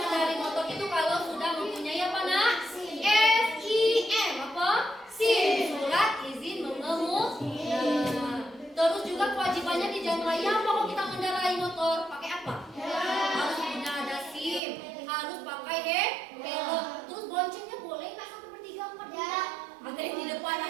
motor itu kalau sudah mempunyai apa, nak? SIM, apa? SIM, surat izin mengemudi. Terus juga kewajibannya di jalan raya apa kalau kita mengendarai motor? Pakai apa? Harus punya ada SIM, harus pakai helm. Terus boncengnya boleh nggak 1/3, 4/3? Ada yang di depan,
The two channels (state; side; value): drops out; left; at 14.6 s